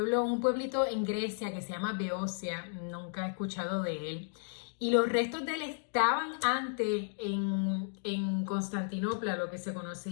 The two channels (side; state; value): right; silent; digital silence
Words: un pueblito en Grecia que se llama Beocia. Nunca he escuchado de él. Y los restos de él estaban antes en Constantinopla, lo que se conoce